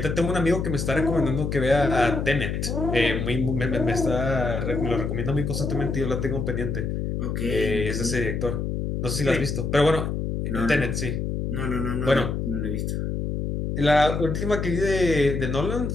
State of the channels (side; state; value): left; noise; hum, 2 dB below the sound